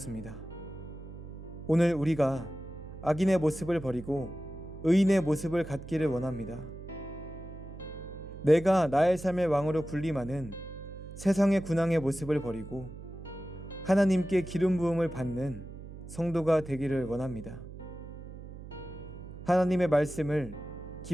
오늘 우리가 악인의 모습을 버리고 의인의 모습을 갖기를 원합니다. 내가 나의 삶의 왕으로 군림하는 세상의 군왕의 모습을 버리고 하나님께 기름 부음을 받는 성도가 되기를 원합니다. 하나님의 말씀을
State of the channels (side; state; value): right; noise; hum, 13 dB below the sound